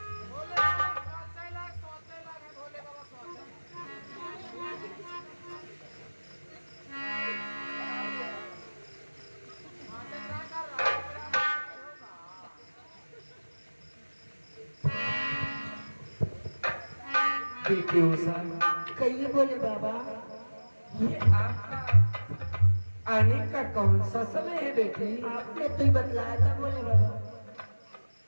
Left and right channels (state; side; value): inverted; both; correlation -1.00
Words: बेटी उषा, कहिए बोले बाबा। ये आपका आने का कौन सा समय है बेटी? आपने तो ही बतलाया था बोले बाबा।